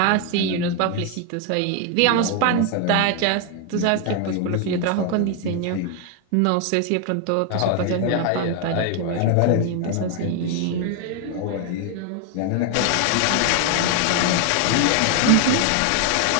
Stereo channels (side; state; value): both; different; correlation 0.01